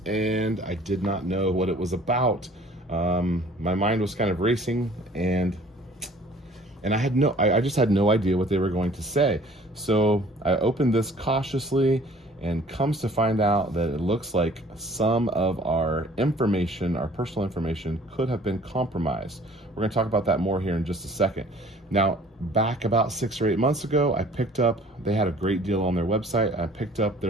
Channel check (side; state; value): both; normal; correlation 0.52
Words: and I did not know what it was about. My mind was kind of racing and I just had no idea what they were going to say. So I opened this cautiously and comes to find out that it looks like some of our information, our personal information, could have been compromised. We're going to talk about that more here in just a second. Now, back about 6 or 8 months ago, they had a great deal on their website. I picked up